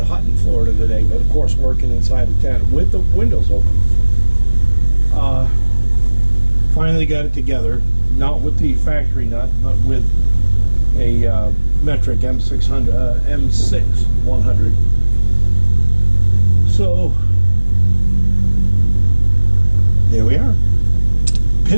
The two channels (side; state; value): both; inverted; correlation -1.00